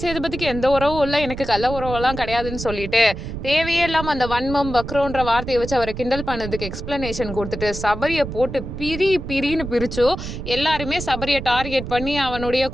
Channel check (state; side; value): noise; right; rumble, 8 dB below the sound